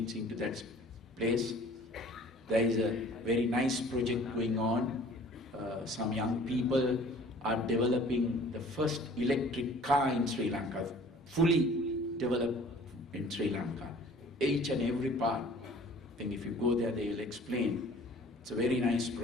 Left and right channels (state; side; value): normal; both; correlation 0.50